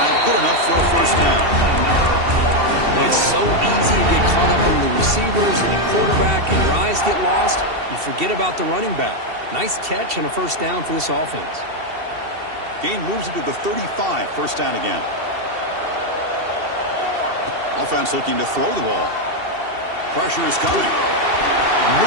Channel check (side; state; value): left; late; 2.7 ms